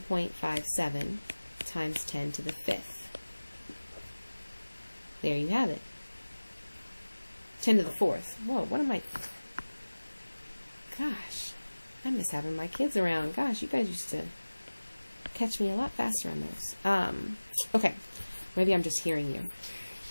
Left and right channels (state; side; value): inverted; both; correlation -1.00